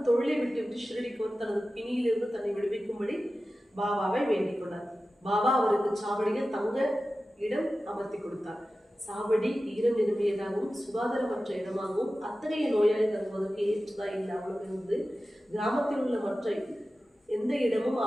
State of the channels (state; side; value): normal; both; correlation 0.94